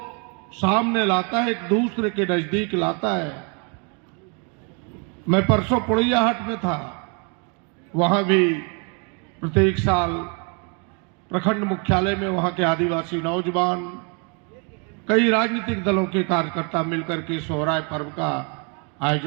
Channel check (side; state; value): left; quieter; 35.7 dB